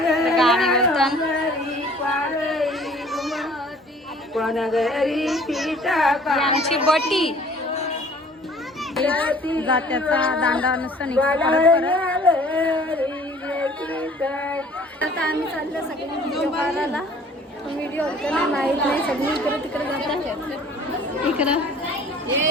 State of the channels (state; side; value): normal; both; correlation 0.52